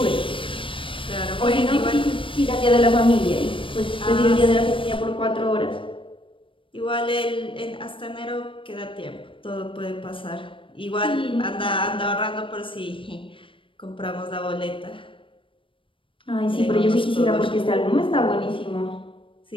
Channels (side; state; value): right; late; 0.25 ms